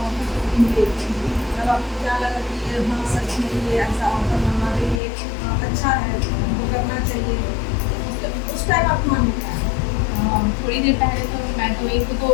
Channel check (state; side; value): drops out; right; at 5.0 s